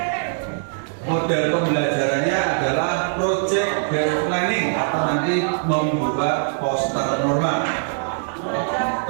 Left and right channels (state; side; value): silent; left; digital silence